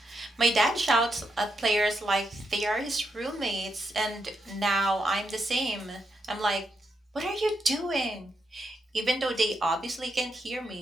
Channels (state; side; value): normal; both; correlation 0.82